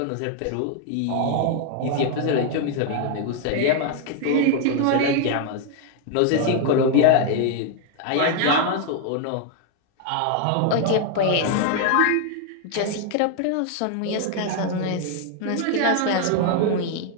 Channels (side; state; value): both; different; correlation 0.00